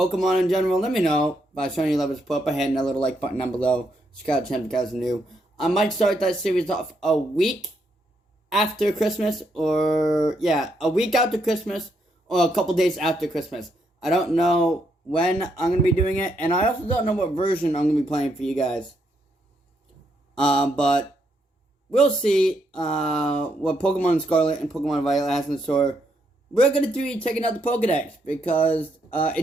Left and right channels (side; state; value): both; normal; correlation 0.77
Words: in general, let me know by showing your love and support by hitting that little like button down below. Scarlett if you guys are new. I might start that series off a week after Christmas, or a week after Christmas, or a couple days after Christmas. I don't know when I'm going to be doing it, and I also don't know what version I'm going to be playing for you guys. But we'll see what Pokemon Scarlet and Pokemon Violet has in store. We're going to be checking out the Pokedex because